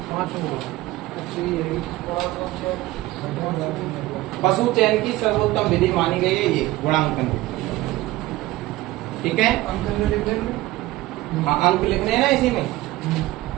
5 पशु चयन की सर्वोत्तम विधि मानी गई है ये गुणांकन। ठीक है, अंक लिख देंगे। हाँ, अंक लिखने हैं ना इसी में,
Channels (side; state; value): left; quieter; 17.6 dB